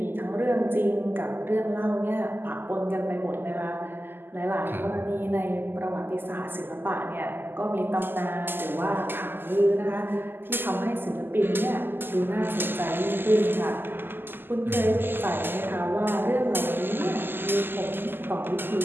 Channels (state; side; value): late; left; 0.096 ms